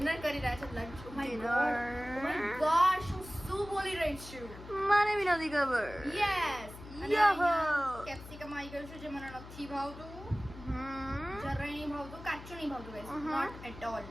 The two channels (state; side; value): noise; left; hum, 15 dB below the sound